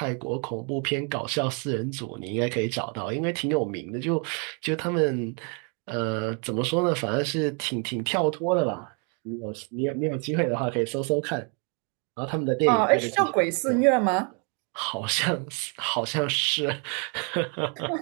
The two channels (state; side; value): quieter; left; 37.3 dB